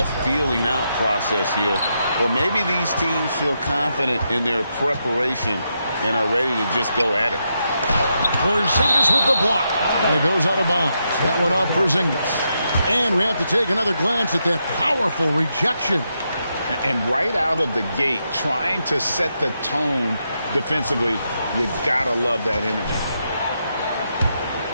feeling out process here. Or maybe these teams feel confident in their preparation and are ready to just go at it. Porzingis with the block. And it goes out of bounds. That one off Porzingis. And we have to take another glance at that powerful rejection. And right out of the gate, trying to set the tone defensively, you gotta love that energy.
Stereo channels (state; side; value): inverted; both; correlation -0.83